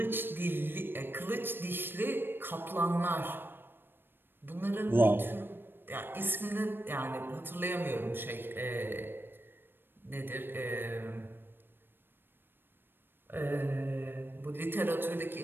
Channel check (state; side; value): late; left; 0.099 ms